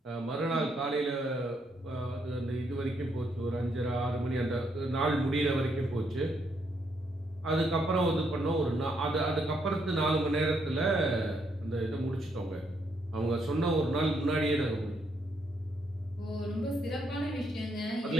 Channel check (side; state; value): both; normal; correlation 0.75